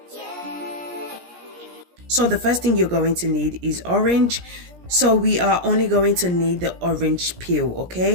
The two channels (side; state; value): left; late; 17 ms